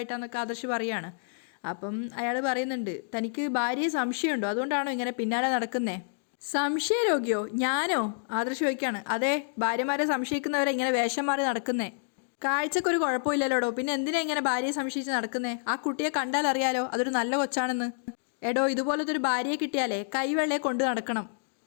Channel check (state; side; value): silent; right; digital silence